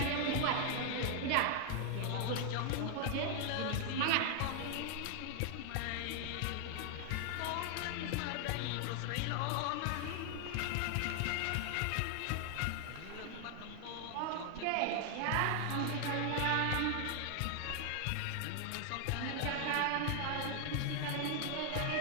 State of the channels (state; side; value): different; both; correlation 0.00